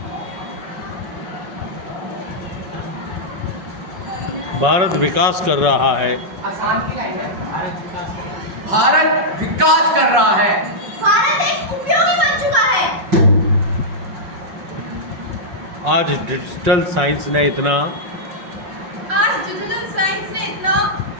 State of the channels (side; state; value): left; late; 5.5 ms